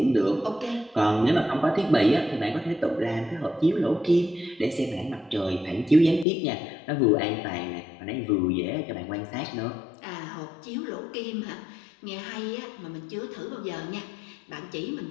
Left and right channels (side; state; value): right; drops out; at 6.2 s